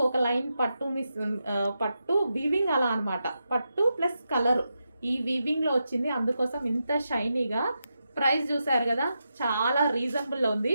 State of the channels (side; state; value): both; inverted; correlation -0.87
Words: ఒక లైన్ పట్టు పట్టు వీవింగ్ అలా అనమాట. పట్టు ప్లస్ కలర్ ఈ వీవింగ్లో వచ్చింది, అందుకోసం ఇంత షైనీగా. ప్రైస్ చూసారు కదా, చాలా రీజనబుల్లో ఉంది.